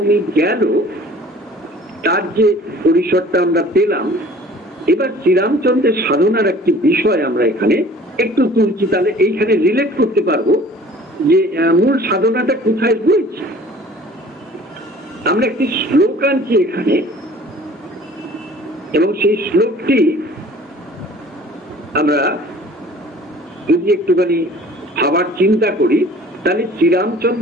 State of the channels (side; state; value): both; normal; correlation 0.49